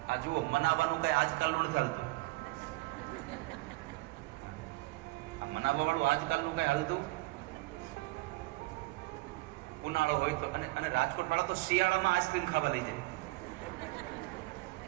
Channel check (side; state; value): left; quieter; 21.9 dB